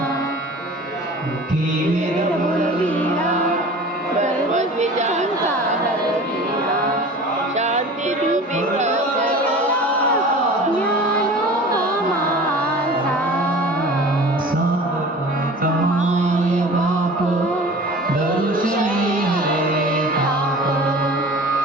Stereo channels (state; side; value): normal; both; correlation 0.40